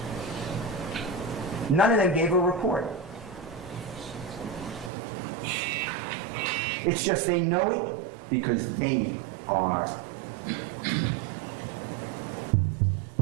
None of them gave a report. It's just they know it because they are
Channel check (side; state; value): left; drops out; at 4.9 s